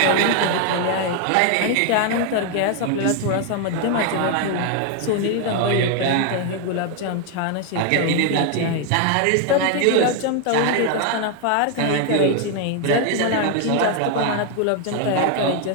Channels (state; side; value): different; both; correlation 0.00